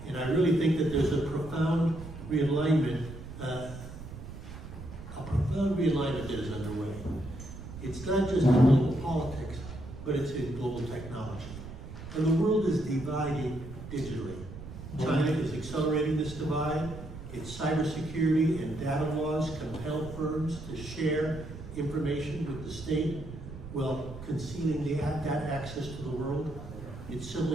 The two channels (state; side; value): noise; right; rumble, 12 dB below the sound